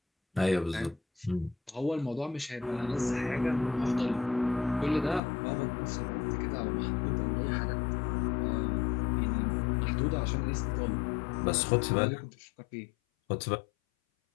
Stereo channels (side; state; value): right; drops out; at 5.2 s